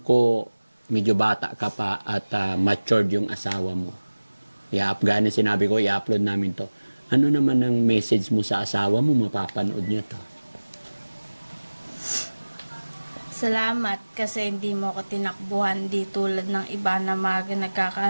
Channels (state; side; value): inverted; both; correlation -1.00